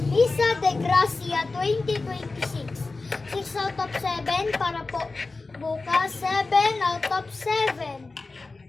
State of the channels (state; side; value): quieter; right; 3.6 dB